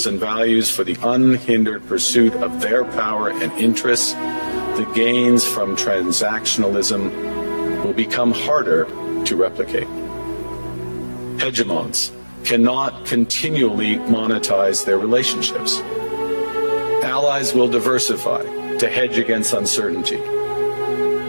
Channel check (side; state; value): both; inverted; correlation -1.00